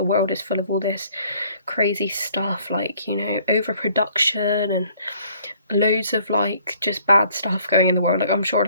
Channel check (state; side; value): inverted; both; correlation -0.60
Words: world is full of all this crazy stuff, like overproduction and loads of like just bad stuff going in the world. Like, I'm sure